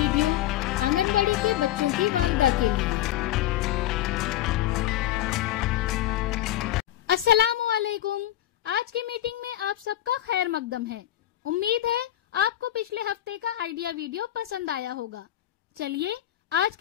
anganwadi के बच्चों की वालदा के लिए। अस्सलामु अलैकुम। आज की मीटिंग में आप सबका खैर मकदम है। उम्मीद है आपको पिछले हफ्ते का आइडिया वीडियो पसंद आया होगा। चलिए आज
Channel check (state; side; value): quieter; right; 12.9 dB